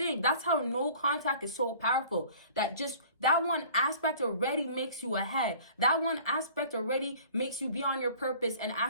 That's how no contact is so powerful. That one aspect already makes you ahead. That one aspect already makes you be on your purpose and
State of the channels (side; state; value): both; inverted; correlation -0.48